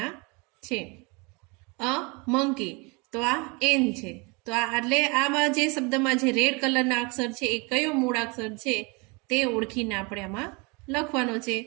છે. અ મંકી તો આ એન છે. તો આ એટલે આમાં જે શબ્દમાં જે રેડ કલરના અક્ષર છે એ કયો મૂળાક્ષર છે તે ઓળખીને આપણે આમાં લખવાનો છે.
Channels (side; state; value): left; quieter; 29.2 dB